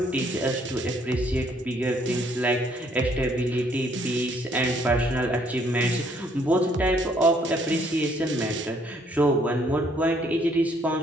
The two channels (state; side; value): normal; both; correlation 0.66